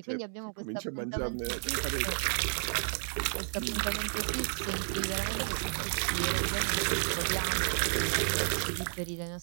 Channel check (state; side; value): silent; left; 56 dB below the other